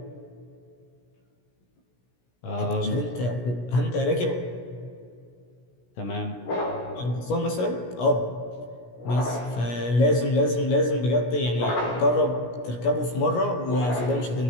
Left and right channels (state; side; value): late; right; 17 ms